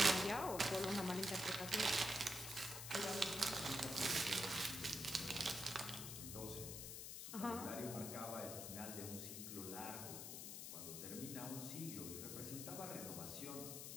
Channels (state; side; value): noise; left; hiss, 6 dB below the sound